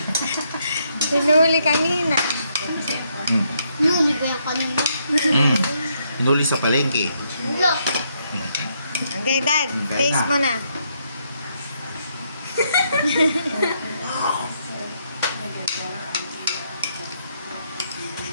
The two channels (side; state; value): both; inverted; correlation -0.75